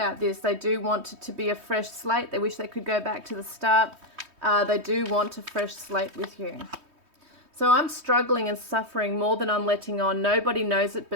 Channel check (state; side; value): late; left; 3.2 ms